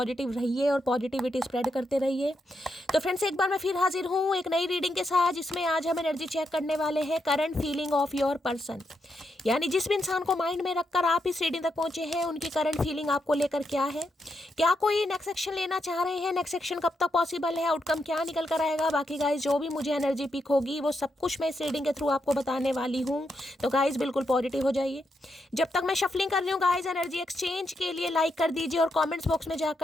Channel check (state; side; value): normal; both; correlation 0.82